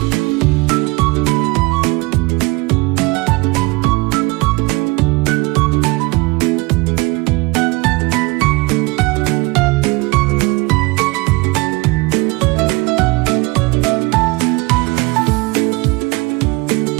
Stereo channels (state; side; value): quieter; left; 24.7 dB